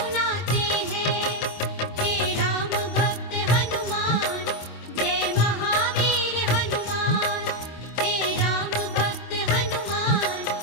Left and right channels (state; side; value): late; right; 25 ms